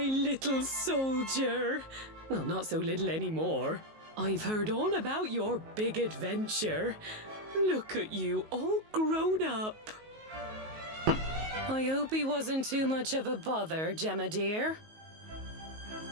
soldier. Well, not so little anymore. I've heard all about your big adventure. Look at you, all grown up. I hope he wasn't too much of a bother, Gemma dear.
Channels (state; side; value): late; left; 19 ms